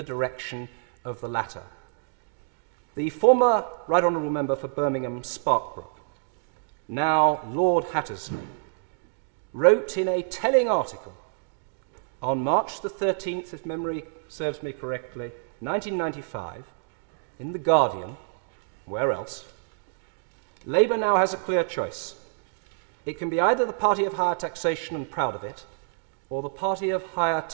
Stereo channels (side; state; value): left; silent; digital silence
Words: direction of the latter. The former Right Honourable Member for Birmingham Sparkbrook, now Lord Hattersley, wrote in a telling article on March the 13th, if memory serves me correctly, 1995, in The Guardian, where else, Labour now has a clear choice. It can be either the party of higher taxation and proud of it, or the party of higher